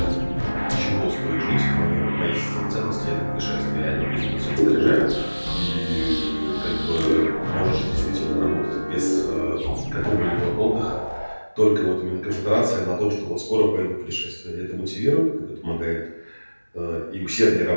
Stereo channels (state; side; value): inverted; both; correlation -1.00